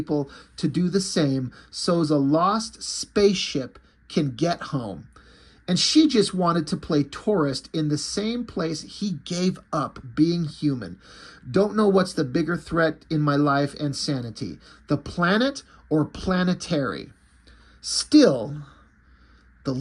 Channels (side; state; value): both; identical; correlation 1.00